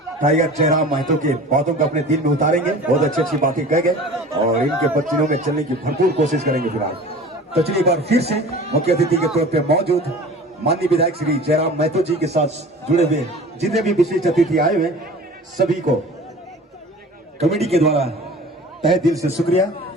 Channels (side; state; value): both; normal; correlation 0.41